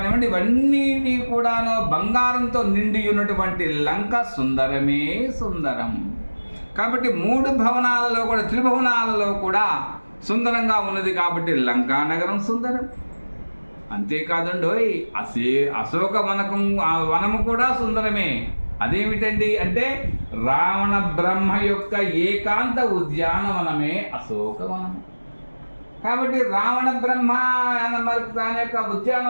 ఇవన్నీ కూడాను బంగారంతో నిండి ఉన్నటువంటి లంక సుందరమే సుందరం. కాబట్టి 3 భవనాలలో కూడా, త్రిభువనాలలో కూడా సుందరంగా ఉన్నది. కాబట్టి లంకానగరం సుందరం. అంతేకాదండోయ్, అశోక వనము కూడా సుందరమే. అదేమిటండి అంటే రావణ బ్రహ్మ యొక్క ఏకాంత ఉద్యానవనమే అశోకవనము. కాబట్టి రావణ బ్రహ్మ మరి దాని యొక్క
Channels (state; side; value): inverted; both; correlation -1.00